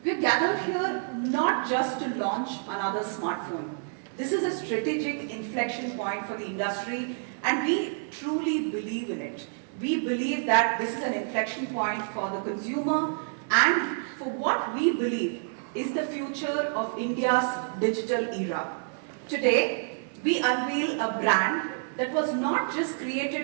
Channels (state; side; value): silent; left; digital silence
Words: We're gathered here not just to launch another smartphone. This is a strategic inflection point for the industry, and we truly believe in it. We believe that this is an inflection point for the consumer and for what we believe is the future of India's digital era. Today, we unveil a brand that was not just